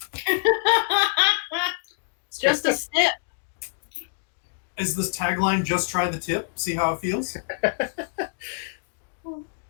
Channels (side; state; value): right; silent; digital silence